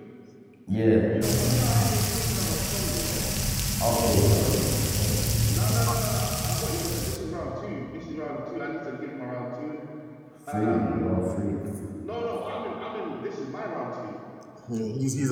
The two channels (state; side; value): identical; both; correlation 1.00